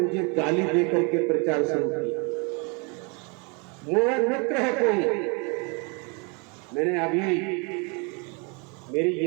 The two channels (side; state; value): left; quieter; 32.6 dB